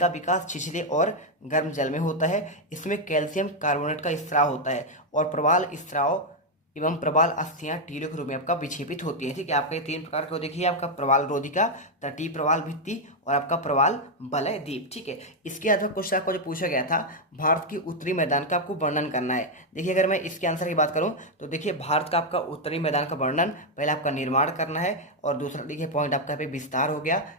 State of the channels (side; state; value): both; normal; correlation 0.02